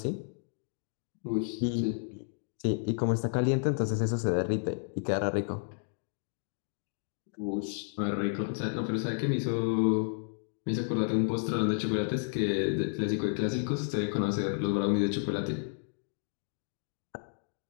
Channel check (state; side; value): silent; right; digital silence